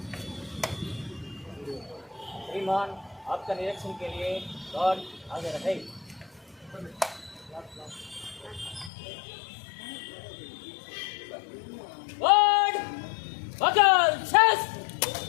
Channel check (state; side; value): drops out; right; at 8.9 s